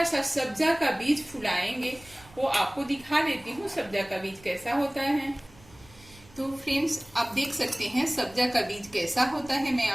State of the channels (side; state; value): right; noise; rumble, 24 dB below the sound